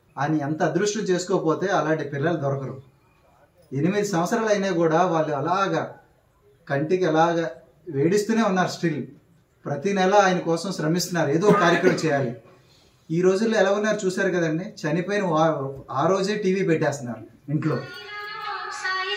ఆయన ఎంత అదృష్టం చేసుకోకపోతే అలాంటి పిల్లలు దొరకరు. 8 సంవత్సరాలు అయినా కూడా వాళ్ళు అలాగా కంటికి అలాగా వేడిస్తూనే ఉన్నారు. స్టిల్ ప్రతి నెల ఆయన కోసం శ్రమిస్తున్నారు, ఏదో కార్యక్రమం చేయాలి. ఈ రోజుల్లో ఎలా ఉన్నారు చూసారు కదండి. చనిపోయిన ఆ రోజే టీవీ పెట్టేస్తున్నారు ఇంట్లో.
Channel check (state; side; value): identical; both; correlation 1.00